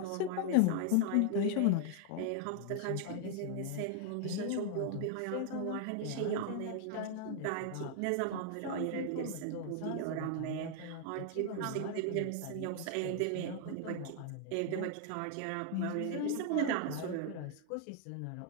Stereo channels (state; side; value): different; both; correlation 0.00